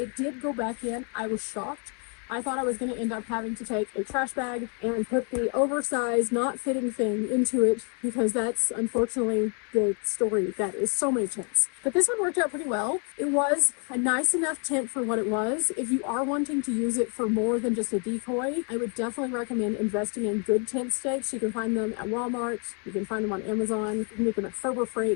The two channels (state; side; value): quieter; right; 38.3 dB